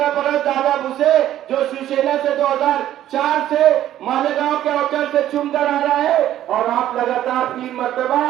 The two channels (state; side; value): quieter; left; 12.4 dB